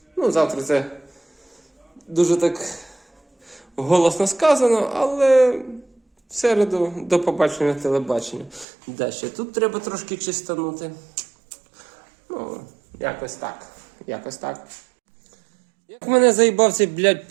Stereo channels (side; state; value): left; drops out; at 8.7 s